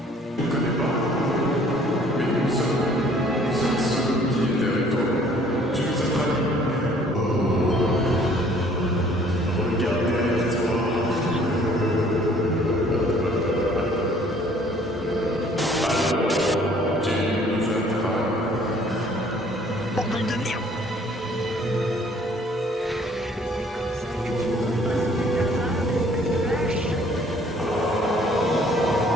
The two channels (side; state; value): both; normal; correlation 0.58